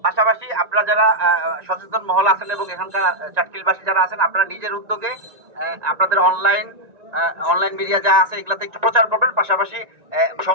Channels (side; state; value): left; late; 1.9 ms